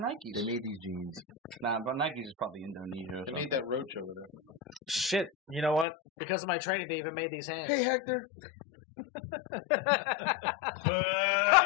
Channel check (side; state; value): right; drops out; at 5.9 s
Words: They made these jeans. Nah, but Nikes is probably Indonesia or They something. made that roach over there. Shit, you know what? Because of my training, they even made these hands. Hey, Hector.